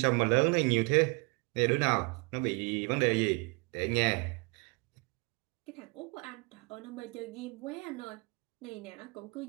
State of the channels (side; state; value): left; quieter; 29.2 dB